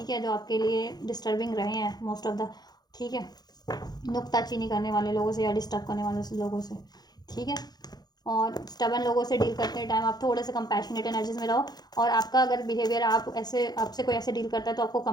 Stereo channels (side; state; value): right; late; 0.19 ms